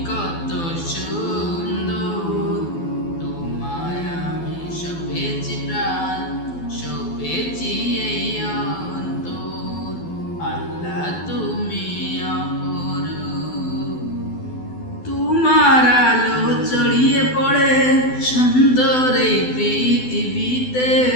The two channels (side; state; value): right; late; 12 ms